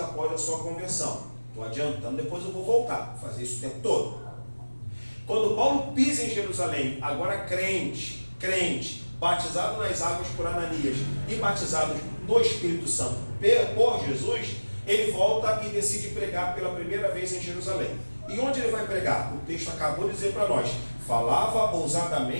a sua conversão. Estou adiantando, depois eu vou voltar, vou fazer isso o tempo todo. Quando Paulo pisa em Jerusalém, agora crente, batizado nas águas por Ananias e batizado no Espírito Santo por Jesus, ele volta e decide pregar pela primeira vez em Jerusalém. E onde ele vai pregar? O texto acabou de dizer para nós: falava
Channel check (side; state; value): both; inverted; correlation -1.00